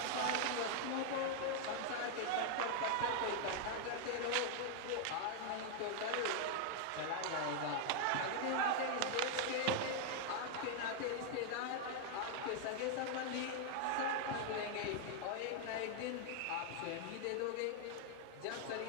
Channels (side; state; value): both; different; correlation 0.00